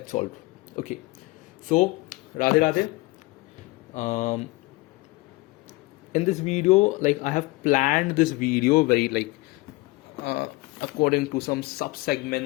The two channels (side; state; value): right; quieter; 22.3 dB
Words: solved. Okay, so Radhe Radhe. In this video, like I have planned this video very according to some sub